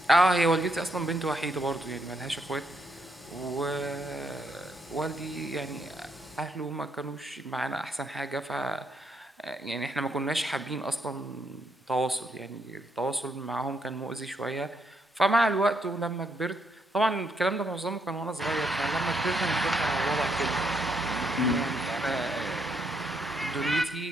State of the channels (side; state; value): both; normal; correlation 0.75